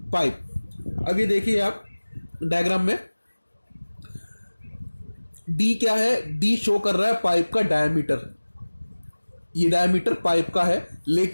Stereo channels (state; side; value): inverted; both; correlation -1.00